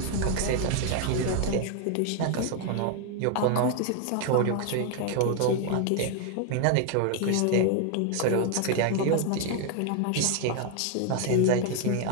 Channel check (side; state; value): both; different; correlation 0.00